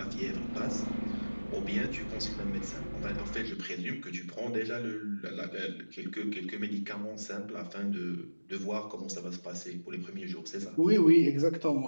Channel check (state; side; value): inverted; both; correlation -1.00